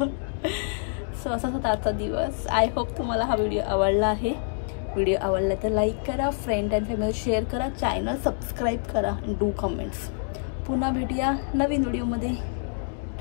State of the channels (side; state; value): right; silent; digital silence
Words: सो असा होता आजचा दिवस. आय होप तुम्हाला हा व्हिडिओ आवडला आहे. व्हिडिओ आवडला तर लाईक करा, फ्रेंड अँड फॅमिली शेअर करा, चॅनल सबस्क्राईब करा, डू कमेंट्स. पुन्हा भेटूया नवीन व्हिडिओमध्ये.